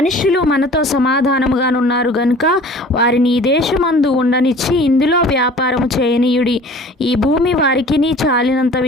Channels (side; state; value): both; normal; correlation 0.46